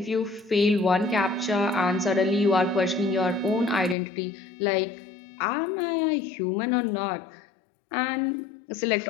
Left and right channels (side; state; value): right; drops out; at 4.0 s